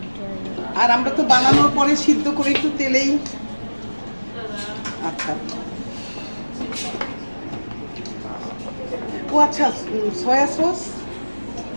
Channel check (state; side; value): inverted; both; correlation -1.00